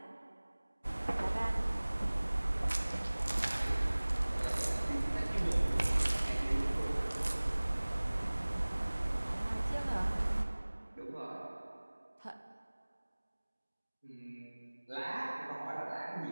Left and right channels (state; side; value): inverted; both; correlation -1.00